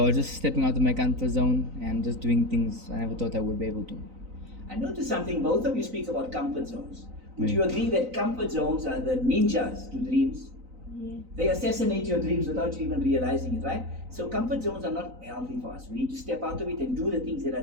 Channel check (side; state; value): left; late; 3.9 ms